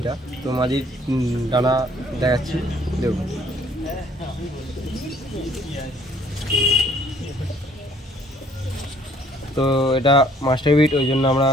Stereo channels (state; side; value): normal; both; correlation 0.60